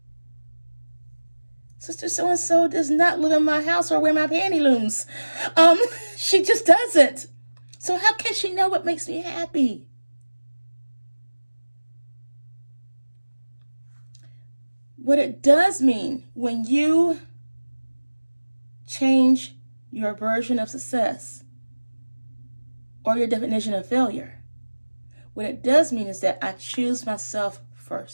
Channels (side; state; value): both; inverted; correlation -1.00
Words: Sister so-and-so does not live in my house or wear my panty looms. She just doesn't. So how can she know what makes me happy? What it does mean when you change your version of success or your definition of failure, what it does mean is that I choose myself